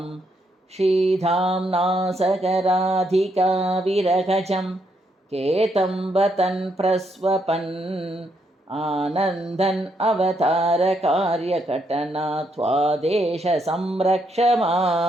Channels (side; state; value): both; normal; correlation 0.76